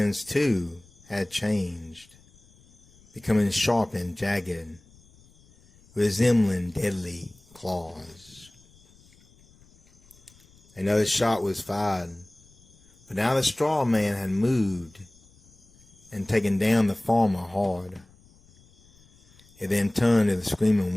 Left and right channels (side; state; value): left; noise; rumble, 28 dB below the sound